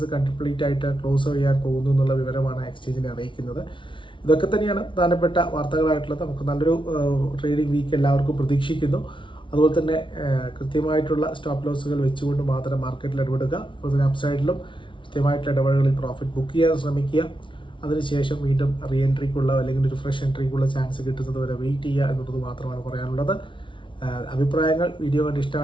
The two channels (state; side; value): late; right; 0.24 ms